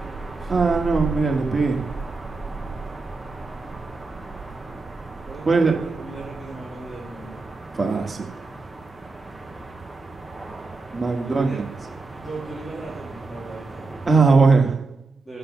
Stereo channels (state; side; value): quieter; left; 3.9 dB